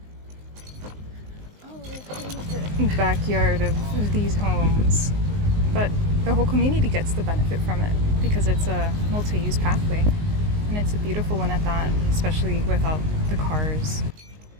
Backyard of these homes, but the whole community gets the benefit from it because it's a multi-use pathway, and it's a beautiful one at that, especially without the cars.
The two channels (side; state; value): left; late; 19 ms